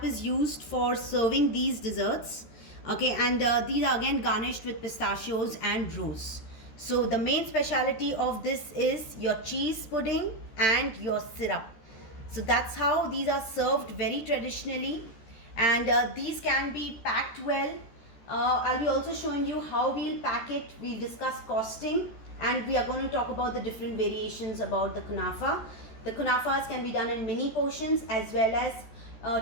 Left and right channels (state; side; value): late; right; 13 ms